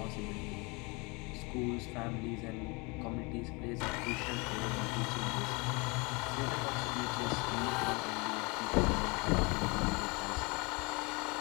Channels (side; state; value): right; quieter; 28.3 dB